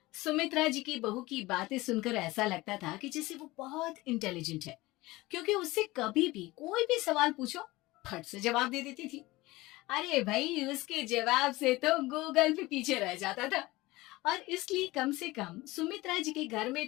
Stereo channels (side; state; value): right; quieter; 20.0 dB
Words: सुमित्रा जी की बहू की बातें सुनकर ऐसा लगता था कि जैसे वो बहुत इंटेलिजेंट है, क्योंकि उससे कभी भी कोई भी सवाल पूछो फट से जवाब दे देती थी। अरे भाई, उसके जवाब से तो गूगल भी पीछे रह जाता था। और इसलिए कम से कम सुमित्रा जी के घर में